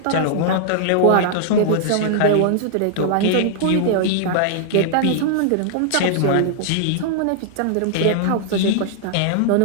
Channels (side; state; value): both; different; correlation -0.01